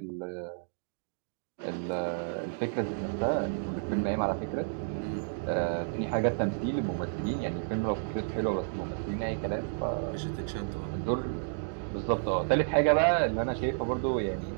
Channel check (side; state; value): left; silent; digital silence